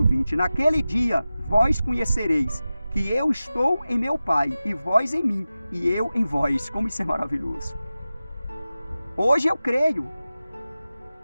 20. Naquele dia vós conhecereis que eu estou em meu Pai, e vós em mim, e eu em vós. Como isso é maravilhoso. Hoje eu creio.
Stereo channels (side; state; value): both; inverted; correlation -0.95